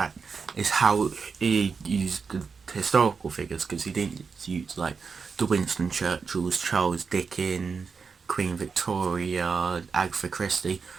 how he used the historical figures, because he didn't use like the Winston Churchills, Charles Dickens, Queen Victoria, Agatha Christie,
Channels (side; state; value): left; quieter; 5.3 dB